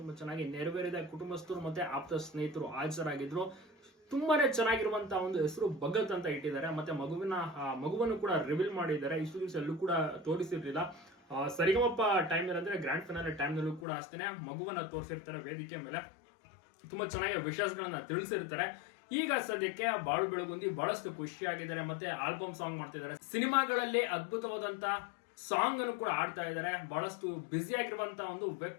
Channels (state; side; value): drops out; right; at 13.9 s